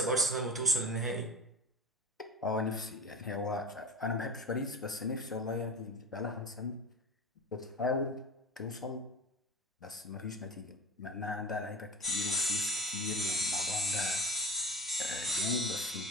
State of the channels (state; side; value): normal; both; correlation 0.30